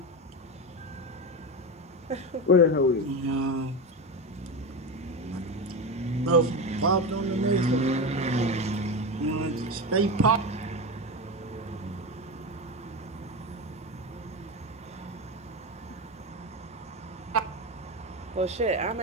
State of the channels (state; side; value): normal; both; correlation 0.19